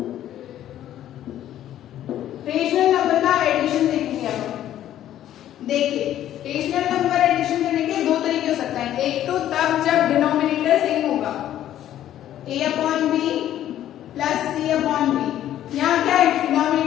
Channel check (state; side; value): quieter; right; 11.9 dB